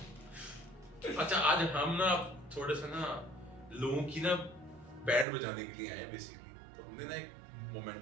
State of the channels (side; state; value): left; drops out; at 5.2 s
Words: अच्छा, आज हम ना थोड़े से ना लोगों की ना बैंड बजाने के लिए आए बेसिकली, तो हमने ना एक